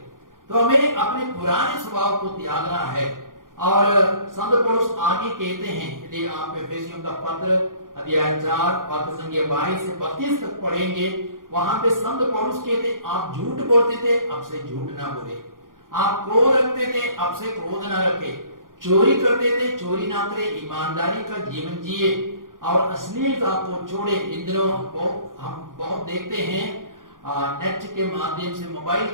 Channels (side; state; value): left; late; 0.90 ms